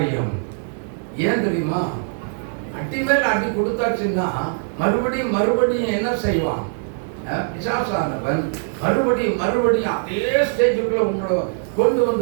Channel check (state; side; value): silent; left; digital silence